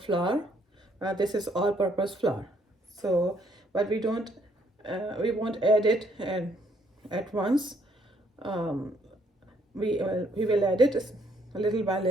flour. This is all-purpose flour. So, but we won't add it at once. We will add it little by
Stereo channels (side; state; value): both; normal; correlation 0.68